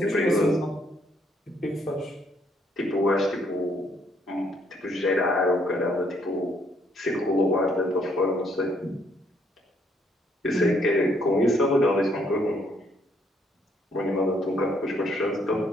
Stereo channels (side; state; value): both; normal; correlation 0.69